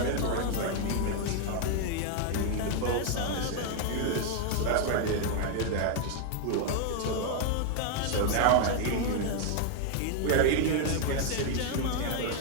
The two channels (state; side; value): different; both; correlation 0.00